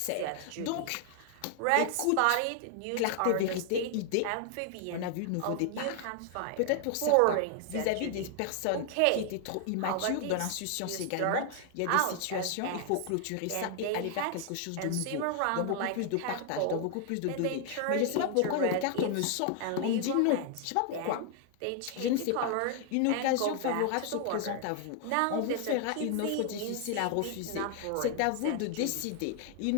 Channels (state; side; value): different; both; correlation 0.00